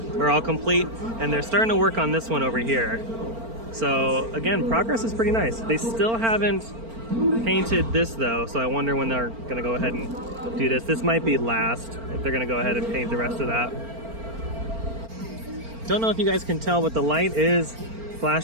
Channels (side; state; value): left; late; 4.4 ms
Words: are all complete, and they're starting to work on this one over here. So again, progress is pretty nice. They still haven't painted this though, so I wonder when they're gonna go ahead and do this. This might be last, if they're gonna go ahead and paint the rest of that. Don't know if you guys can tell, but the light is